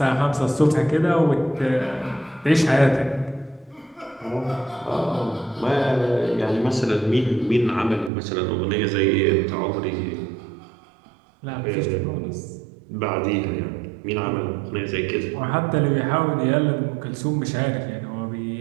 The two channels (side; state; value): left; drops out; at 8.1 s